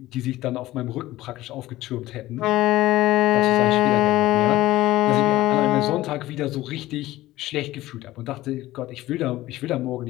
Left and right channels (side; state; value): right; quieter; 16.5 dB